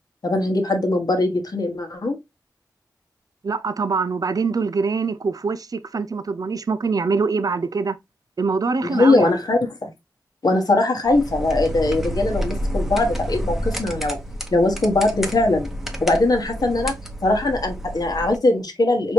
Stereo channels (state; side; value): normal; both; correlation 0.77